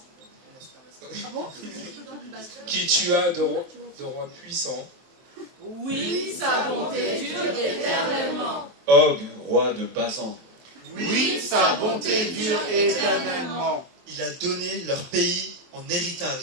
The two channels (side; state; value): left; late; 23 ms